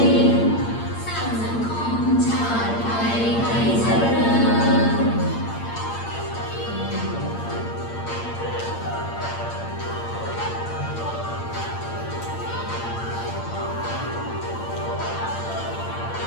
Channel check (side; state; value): right; late; 8.7 ms